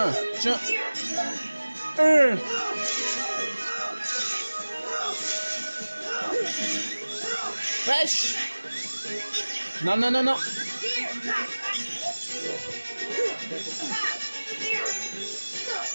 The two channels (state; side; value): inverted; both; correlation -1.00